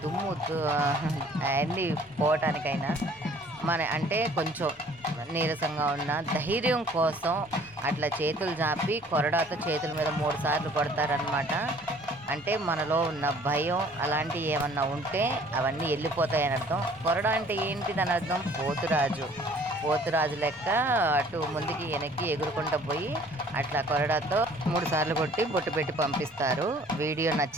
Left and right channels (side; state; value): both; normal; correlation 0.55